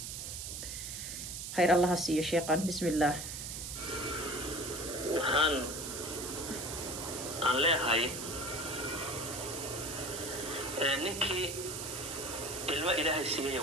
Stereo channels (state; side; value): noise; right; hiss, 6 dB below the sound